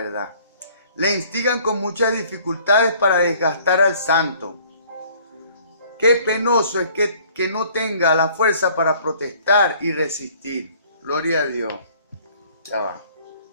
Le instigan con muchas dificultades para desgastar al santo. Qué penoso es que que no tenga la fuerza para protestar y resistir. Gloria a Dios. Ya va.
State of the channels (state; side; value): inverted; both; correlation -0.56